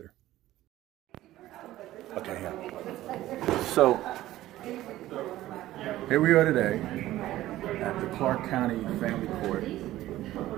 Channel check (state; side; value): quieter; left; 15.1 dB